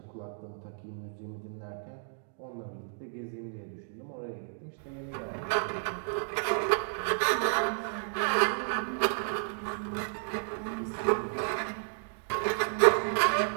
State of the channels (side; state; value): left; silent; digital silence